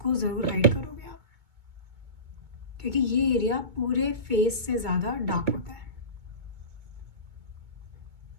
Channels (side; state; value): left; late; 2.2 ms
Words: ज़रूर हाइड करोगे आप, क्योंकि ये एरिया पूरे फेस से ज़्यादा डार्क होता है।